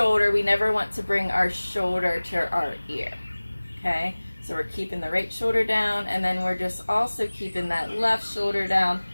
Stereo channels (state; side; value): inverted; both; correlation -1.00